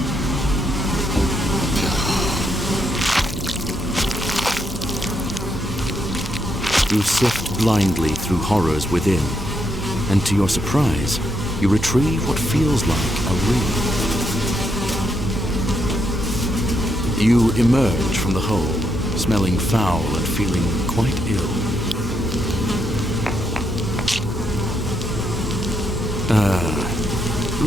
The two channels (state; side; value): normal; both; correlation 0.78